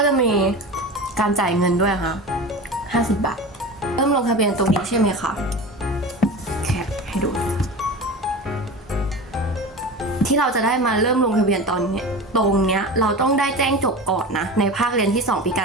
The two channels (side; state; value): both; normal; correlation 0.31